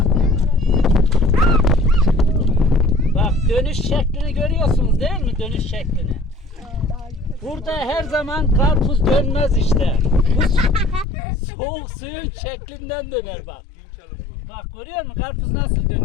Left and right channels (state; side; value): drops out; right; at 11.1 s